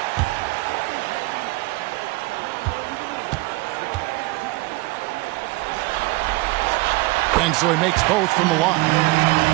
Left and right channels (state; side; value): quieter; left; 22.4 dB